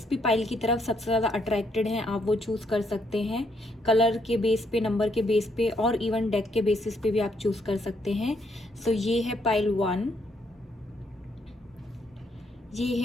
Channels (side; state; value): both; normal; correlation 0.73